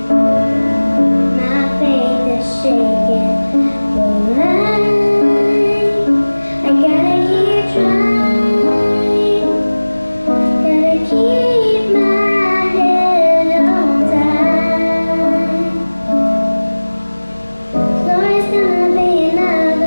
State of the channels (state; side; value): inverted; both; correlation -1.00